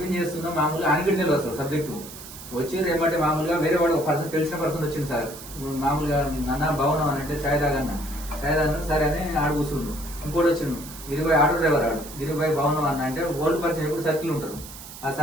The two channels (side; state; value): right; noise; hiss, 14 dB below the sound